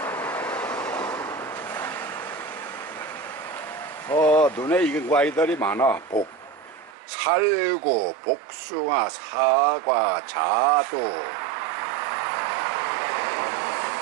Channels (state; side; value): drops out; left; at 6.9 s